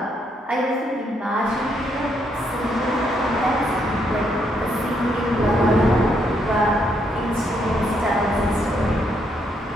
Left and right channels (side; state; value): both; normal; correlation 0.75